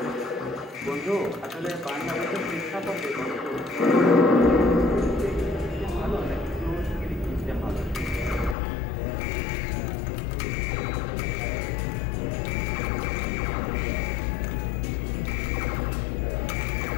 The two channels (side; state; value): right; drops out; at 8.6 s